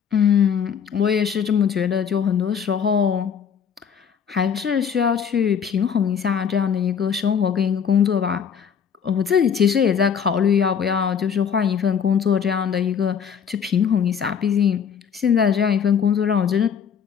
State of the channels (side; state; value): right; quieter; 7.4 dB